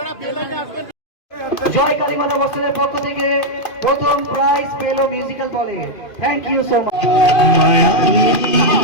জয় কালীমাতা বস্ত্রের পক্ষ থেকে প্রথম প্রাইজ পেল মিউজিক্যাল বলে। Thank you so much.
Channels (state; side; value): late; right; 2.5 ms